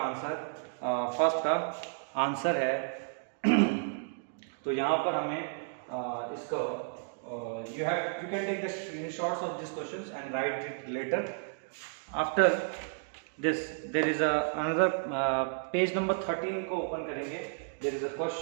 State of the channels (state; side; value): silent; left; digital silence